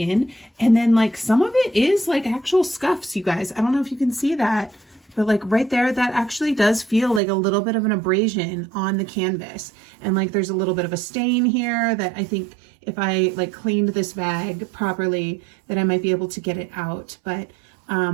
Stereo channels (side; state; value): left; drops out; at 7.2 s